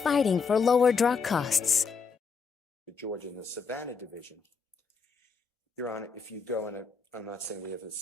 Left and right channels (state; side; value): quieter; right; 5.2 dB